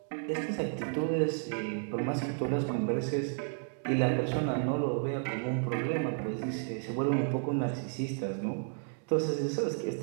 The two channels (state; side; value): silent; left; 56 dB below the other